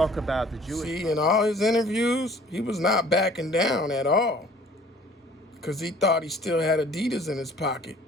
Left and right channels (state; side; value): normal; both; correlation 0.52